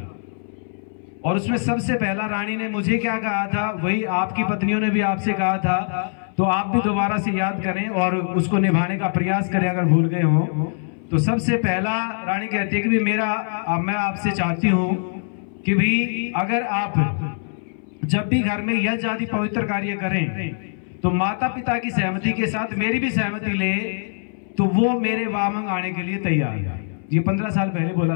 और उसमें सबसे पहला रानी ने मुझे क्या कहा था, वही आपकी पत्नियों ने भी आपसे कहा था, तो आप भी दोबारा से याद करें और उसको निभाने का प्रयास करें अगर भूल गए हो। तो सबसे पहला रानी कहती है कि भी मैं आपसे चाहती हूं कि भी अगर आप जब भी घर में यज्ञ आदि पवित्र कार्य करें तो माता पिता की सहमति के साथ मेरी भी सहमति ले, तो वो मेरे वामंग आने के लिए तैयार है। ये 15 साल पहले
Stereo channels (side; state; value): right; silent; 62 dB below the other